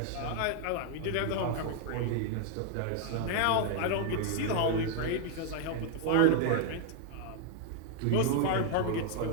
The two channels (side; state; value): both; different; correlation 0.00